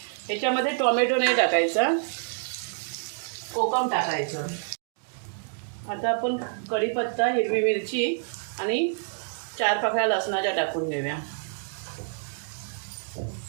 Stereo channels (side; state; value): left; silent; digital silence